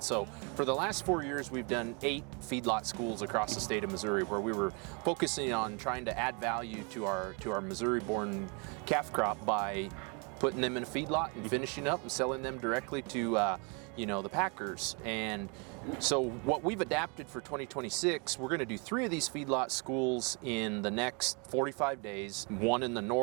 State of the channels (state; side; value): quieter; left; 33.8 dB